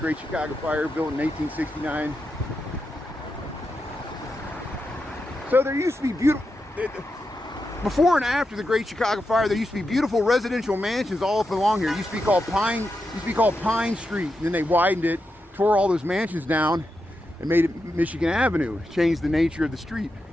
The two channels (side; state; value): both; normal; correlation 0.87